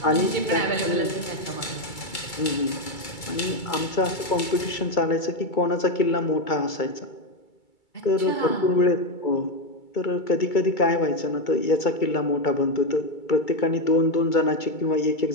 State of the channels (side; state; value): right; late; 2.3 ms